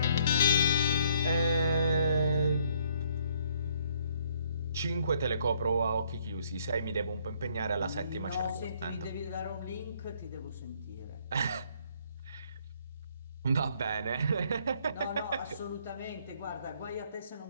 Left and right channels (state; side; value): inverted; both; correlation -0.65